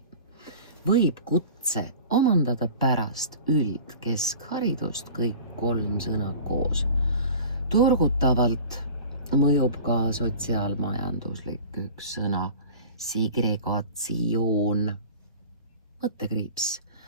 Võib kutse omandada pärast üldkeskharidust kõik 3 sõna koos. Turgutavalt mõjub ka sotsiaalmajanduslik üks sõna segregatsioon. Mõttekriips.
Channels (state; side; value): inverted; both; correlation -0.40